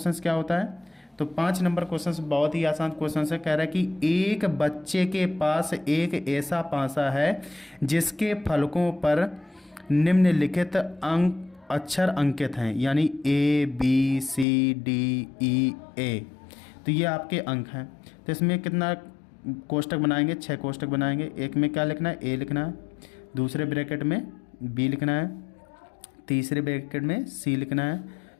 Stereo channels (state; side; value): drops out; right; at 14.5 s